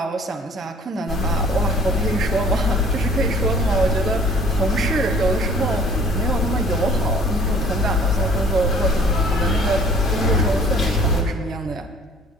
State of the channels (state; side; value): normal; both; correlation 0.52